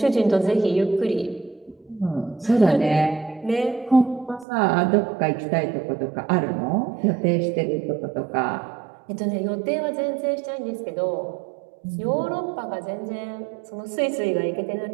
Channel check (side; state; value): left; drops out; at 4.5 s